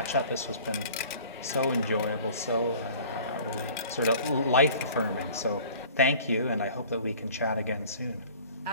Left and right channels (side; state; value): both; inverted; correlation -0.47